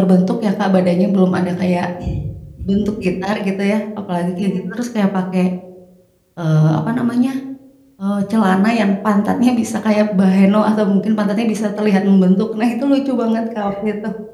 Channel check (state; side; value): identical; both; correlation 1.00